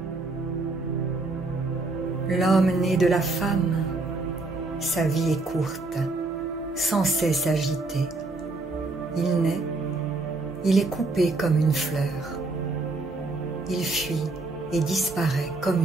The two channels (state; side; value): quieter; left; 3.2 dB